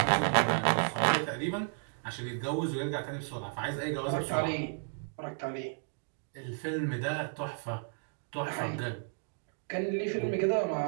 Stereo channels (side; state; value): left; silent; digital silence